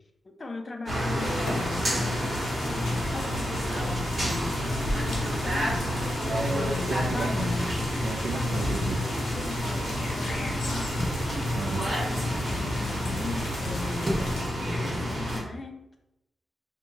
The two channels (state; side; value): normal; both; correlation 0.87